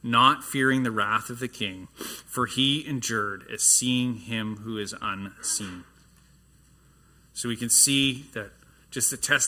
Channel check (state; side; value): identical; both; correlation 1.00